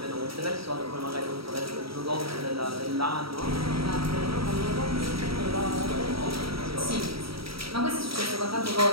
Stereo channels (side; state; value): left; late; 0.75 ms